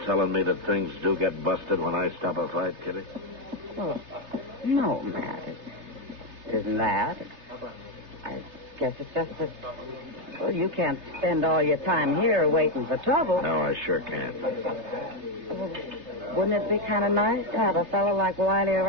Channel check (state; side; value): late; left; 3.3 ms